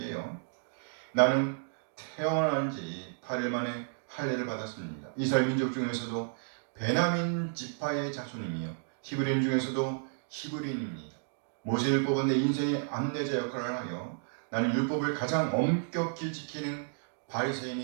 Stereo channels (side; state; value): left; silent; digital silence